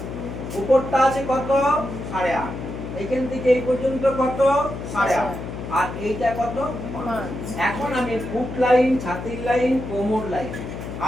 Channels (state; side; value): noise; left; hum, 8 dB below the sound